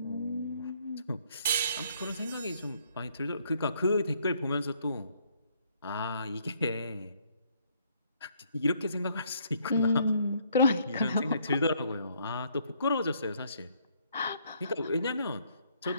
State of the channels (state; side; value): inverted; both; correlation -0.67